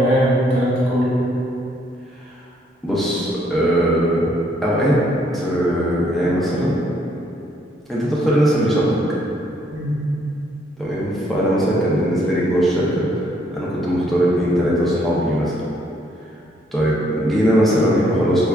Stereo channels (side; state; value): both; normal; correlation 0.69